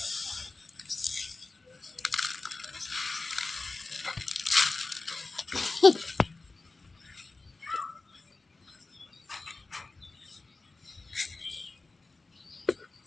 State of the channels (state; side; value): quieter; right; 3.5 dB